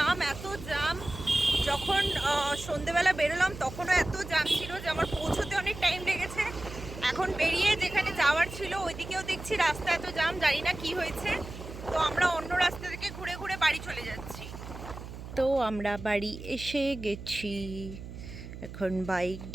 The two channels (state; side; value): noise; right; hum, 11 dB below the sound